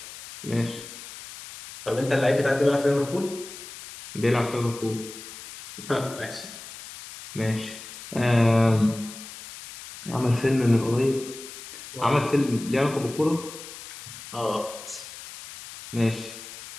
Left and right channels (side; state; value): left; noise; hiss, 14 dB below the sound